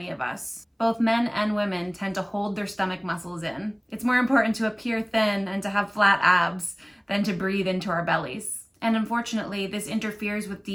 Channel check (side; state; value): both; identical; correlation 1.00